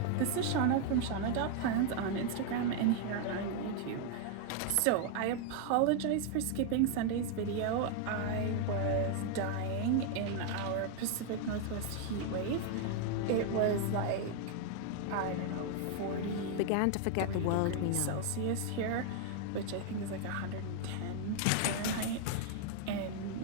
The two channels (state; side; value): different; both; correlation 0.00